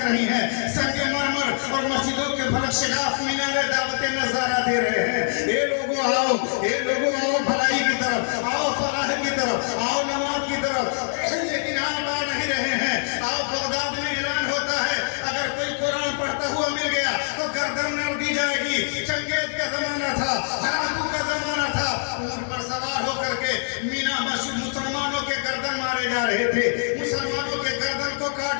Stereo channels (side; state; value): right; silent; digital silence